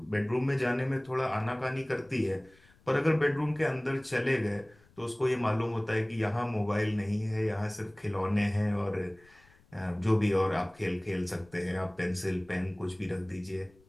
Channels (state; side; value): noise; left; rumble, 29 dB below the sound